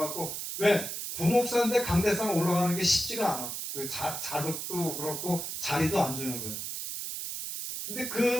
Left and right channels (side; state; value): right; noise; hiss, 5 dB below the sound